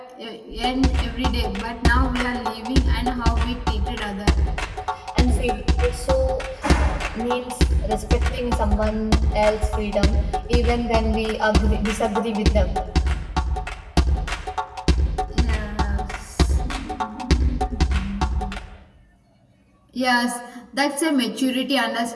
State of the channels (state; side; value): identical; both; correlation 1.00